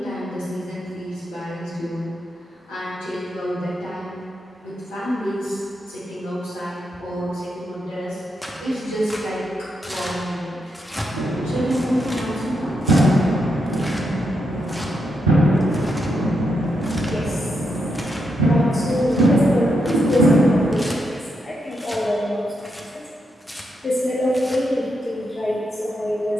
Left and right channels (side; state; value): both; normal; correlation 0.82